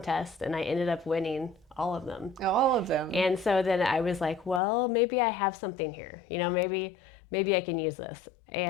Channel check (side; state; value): right; drops out; at 4.6 s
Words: and I ended up winning all of them. All of them. And so then I was like, well, maybe I have something here. Maybe I can use this.